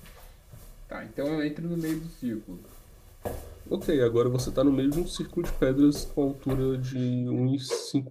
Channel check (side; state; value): both; identical; correlation 1.00